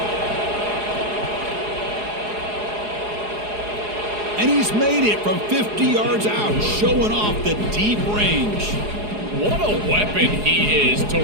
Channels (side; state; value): left; late; 4.8 ms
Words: And he's made it from 50 yards out, showing off the deep range. What a weapon he is to